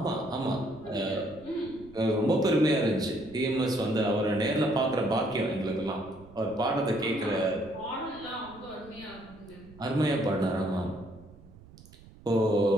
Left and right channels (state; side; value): noise; right; rumble, 22 dB below the sound